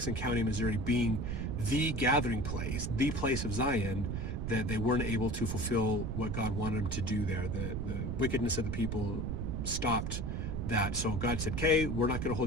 County, Missouri being the gathering place, the place of Zion, that they weren't able to fulfill what God wanted them to do there. The wickedness of the people stopped that. So God said, okay, we're not going to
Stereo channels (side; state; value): right; noise; rumble, 2 dB below the sound